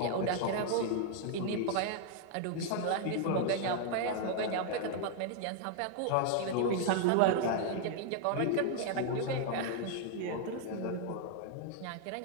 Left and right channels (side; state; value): both; different; correlation 0.00